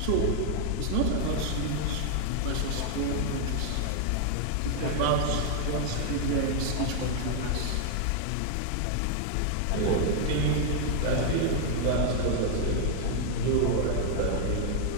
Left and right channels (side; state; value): both; different; correlation 0.00